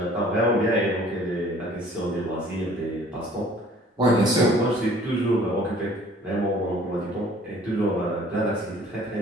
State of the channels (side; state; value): both; normal; correlation 0.53